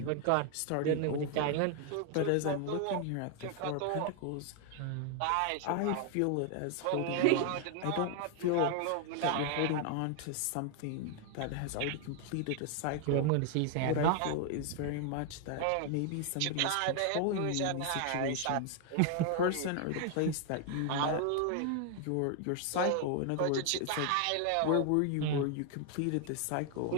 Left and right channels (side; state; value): both; different; correlation 0.00